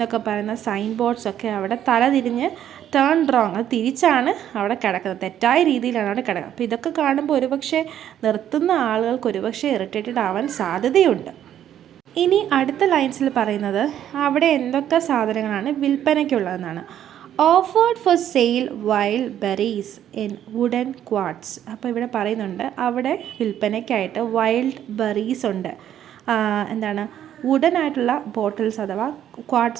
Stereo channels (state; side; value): quieter; left; 10.7 dB